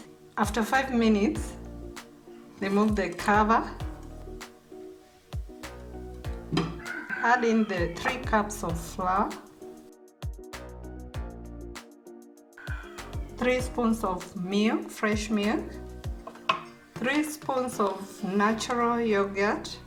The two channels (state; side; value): identical; both; correlation 1.00